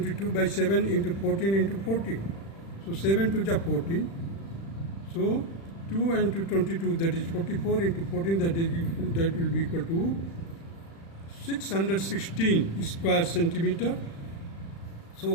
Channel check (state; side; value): late; right; 36 ms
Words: by 7 into 14 into 14. So 7 to the 14. So 2 into 22, that is 44 into 14, that will be equal to 616 square centimeter.